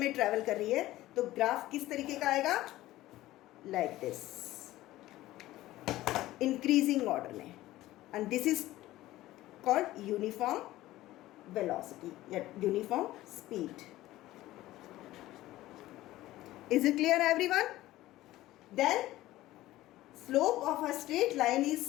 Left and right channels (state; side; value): quieter; right; 16.1 dB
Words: travel कर रही है तो graph किस तरीके का आएगा? Like this. Increasing order में. And this is called uniform velocity, uniform speed. Is it clear everyone? Then slope of a straight line is